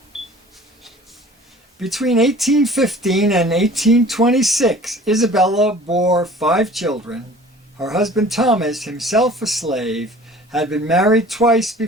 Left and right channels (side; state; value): both; normal; correlation 0.47